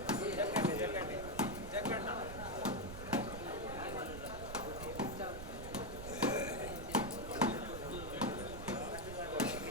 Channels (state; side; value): noise; right; rumble, 9 dB below the sound